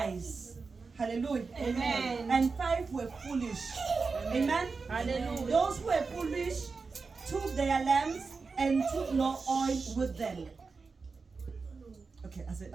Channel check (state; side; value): quieter; left; 4.5 dB